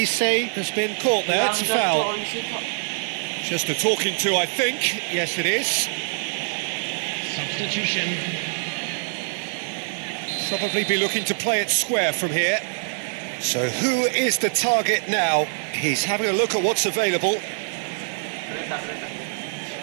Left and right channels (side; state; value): left; silent; 62 dB below the other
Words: has been caught there. It's a foul. Just a talking to, I think. Yes, it is. Substitution. Probably be looking to play it square from here. So who is the target now? He's having a look at what's available.